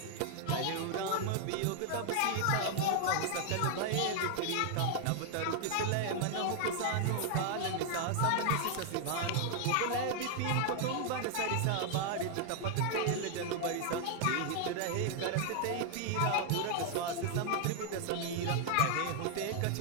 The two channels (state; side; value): different; both; correlation 0.00